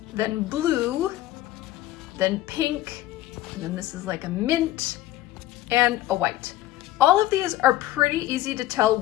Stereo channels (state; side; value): quieter; right; 15.1 dB